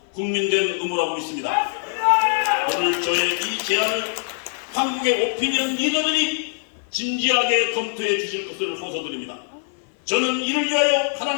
국민된 의무라고 믿습니다. 오늘 저의 이 제안을 한국의 오피니언 리더들이 진지하게 검토해 주실 것을 호소드립니다. 저는 이를 위하여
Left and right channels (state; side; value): silent; right; 56 dB below the other